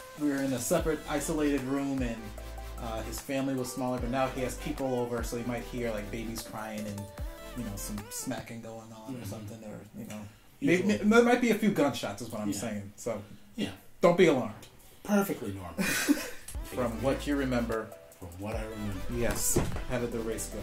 we were in a separate, isolated room, and his family was smaller. But now he has people over, so you might hear like babies crying and some smacking going on or something, or maybe, there might be a few gunshots, is what I'm saying. So don't be alarmed. Perfectly normal. From what you remember. From what I remember. Yes. How did the race go?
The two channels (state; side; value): identical; both; correlation 1.00